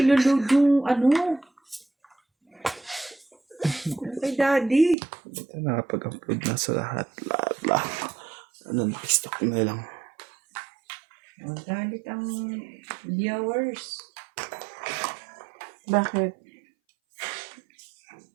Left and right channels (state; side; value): drops out; left; at 5.0 s